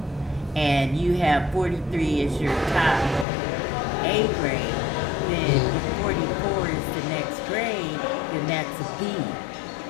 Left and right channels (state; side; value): drops out; right; at 3.2 s